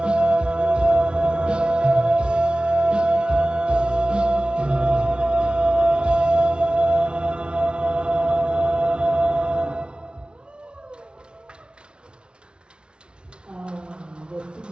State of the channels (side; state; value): left; late; 0.056 ms